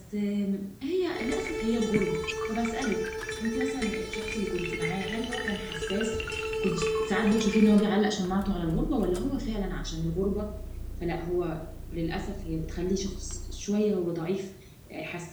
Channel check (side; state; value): both; identical; correlation 1.00